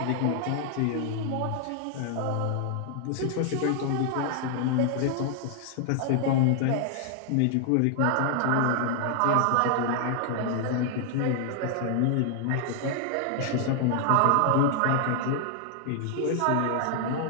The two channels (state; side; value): different; both; correlation 0.00